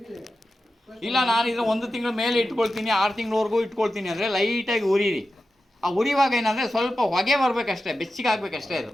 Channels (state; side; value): normal; both; correlation 0.92